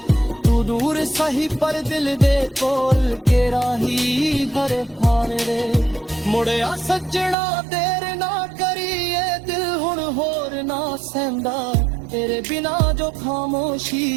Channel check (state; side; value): drops out; left; at 7.4 s